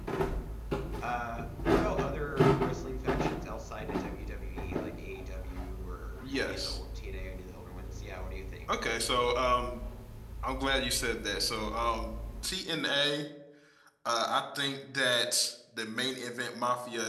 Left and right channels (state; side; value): identical; both; correlation 1.00